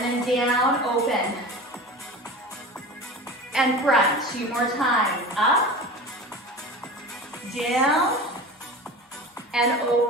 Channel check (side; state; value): both; normal; correlation 0.34